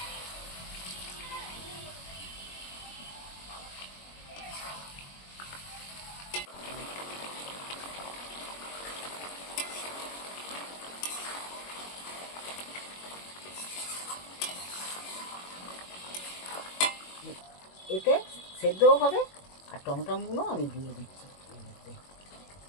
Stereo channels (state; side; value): late; right; 21 ms